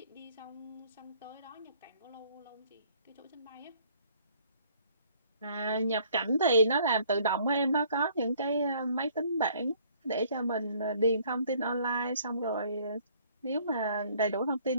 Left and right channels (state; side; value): inverted; both; correlation -0.60